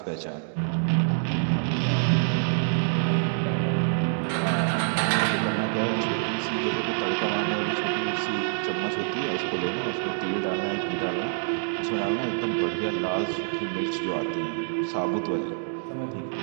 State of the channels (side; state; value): left; silent; digital silence